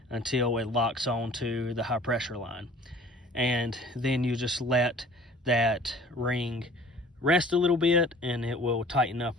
until it locks onto the high pressure line, and then you just let that ring rest a little bit and it will tighten up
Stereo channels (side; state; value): both; normal; correlation 0.48